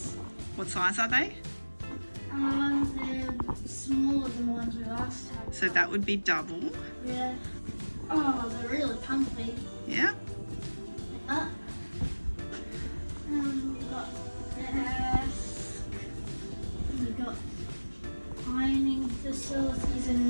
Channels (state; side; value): inverted; both; correlation -1.00